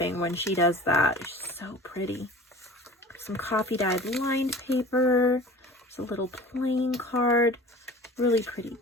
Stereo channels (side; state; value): both; normal; correlation 0.40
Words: when she does that. It's so pretty. Some coffee dyed lined paper. There's a little playing card. Really pretty